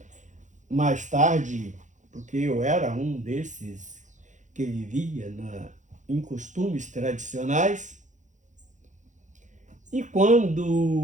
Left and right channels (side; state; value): left; late; 0.36 ms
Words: mais tarde, porque eu era um desses que vivia em costumes tradicionais. E